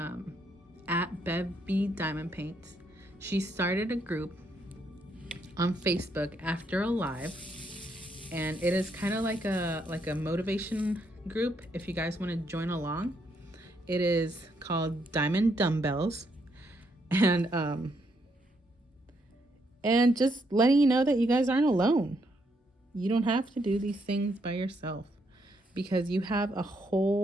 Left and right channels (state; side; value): normal; both; correlation 0.75